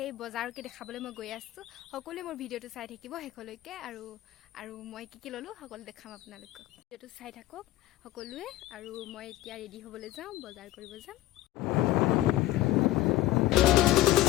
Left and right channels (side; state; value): right; quieter; 15.7 dB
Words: বজাৰকে দেখাবলৈ মই গৈ আছোঁ। সকলোৱে মোৰ ভিডিঅ'টো চাই থাকিব শেষলৈকে আৰু মই কি ল'লোঁ সকলো দেখাম আপোনালোকক। ভিডিঅ'টো চাই থাকক সকলোৱে আৰু মই এতিয়া ৰেডি হ'বলৈ যাওঁ, বজাৰ কৰিব যাম।